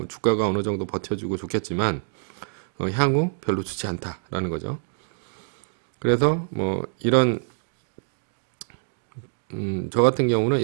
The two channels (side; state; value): left; silent; digital silence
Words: 주가가 어느 정도 버텨주고 좋겠지만 향후 별로 좋지 않다라는 거죠. 그래서 뭐 이런 저 같은 경우는